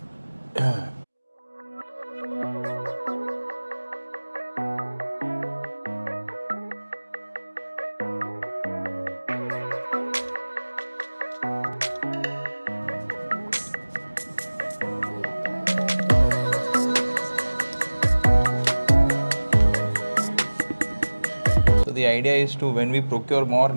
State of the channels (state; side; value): inverted; both; correlation -1.00